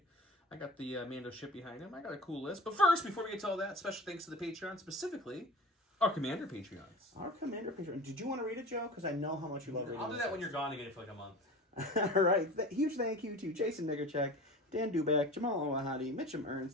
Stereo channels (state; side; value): normal; both; correlation 0.37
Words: I got the Mando ship behind him. I got a cool list. But first, before we get to all that, special thanks to the Patreon, specifically our Commander Patreons. Our Commander Patreon. Did you want to read it, Joe? Because I know how much you love reading. I'll do that when you're gone to get it for like a month. All right. Huge thank you to Jason Nigerchek, Dan Duback, Jamal Owahadi, Mitchum